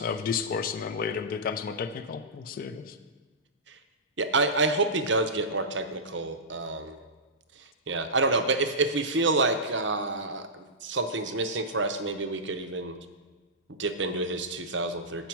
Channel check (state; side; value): normal; both; correlation -0.16